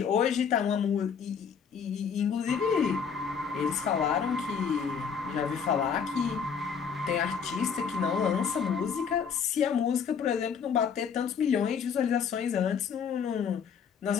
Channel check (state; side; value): quieter; right; 6.7 dB